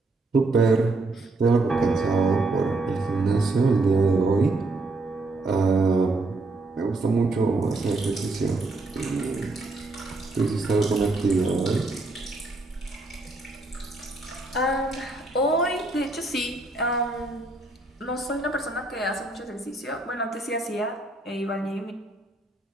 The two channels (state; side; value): quieter; left; 3.1 dB